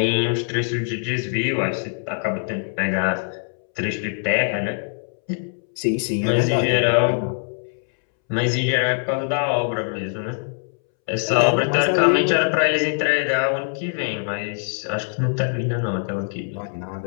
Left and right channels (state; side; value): silent; right; 64 dB below the other